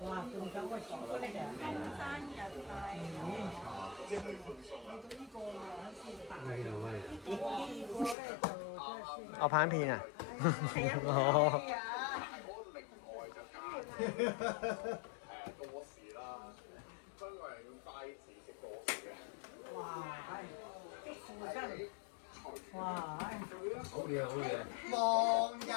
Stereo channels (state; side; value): drops out; right; at 8.2 s